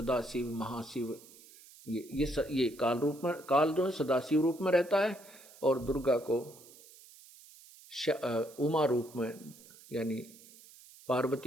शिव, महाशिव, ये काल रूप में, काल जो है सदाशिव रूप में रहता है और दुर्गा को उमा रूप में यानी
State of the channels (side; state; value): right; noise; hiss, 22 dB below the sound